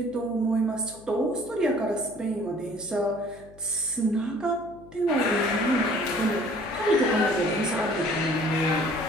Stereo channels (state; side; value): noise; left; hum, 23 dB below the sound